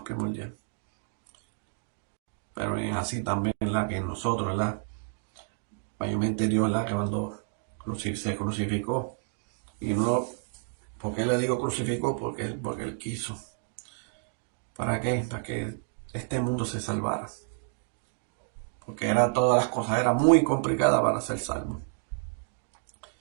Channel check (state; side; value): silent; left; digital silence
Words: primordial. Pero es así también, ¿verdad?, que nosotros, ¿verdad? Mayormente Dios, ¿verdad?, que cuando se crucificó. Y no, ¿por qué le digo crucificó? Porque él quiso. ¿Para qué? Para que este mundo se salvara. Porque todas las cosas, era muy complicada para ser salvo.